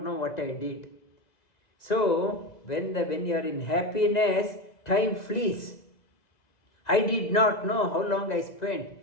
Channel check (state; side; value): late; right; 2.0 ms